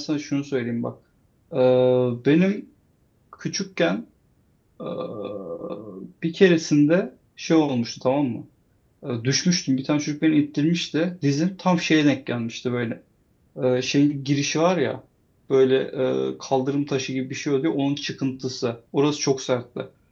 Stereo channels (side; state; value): both; identical; correlation 1.00